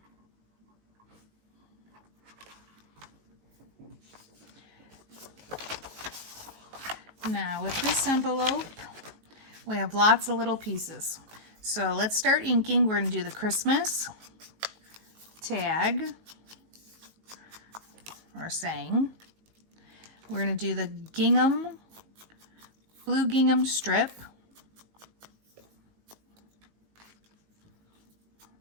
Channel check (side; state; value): left; late; 19 ms